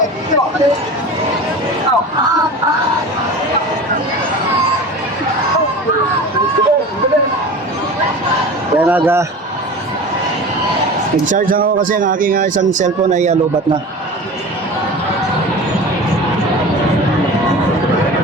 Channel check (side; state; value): both; normal; correlation 0.34